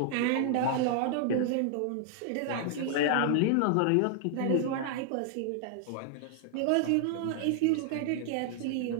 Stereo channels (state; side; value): different; both; correlation 0.00